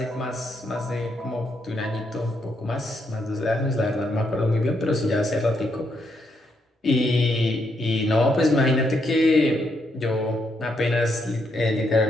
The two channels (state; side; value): normal; both; correlation 0.77